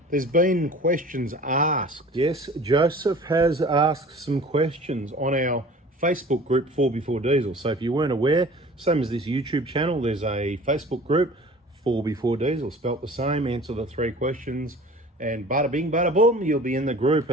there's been questions asked. Yes, Joseph has asked some questions on our Facebook group 4x4 Diesel. So if you weren't aware, same as this YouTube channel, there's a Facebook group 4x4 Diesel, spelt the same. Answer the 3 questions and bada bing, bada boom, you'll be in the group,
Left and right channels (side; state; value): both; normal; correlation 0.44